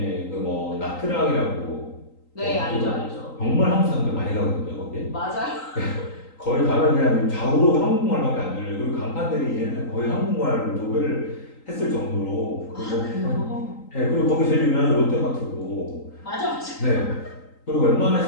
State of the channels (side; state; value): right; late; 3.9 ms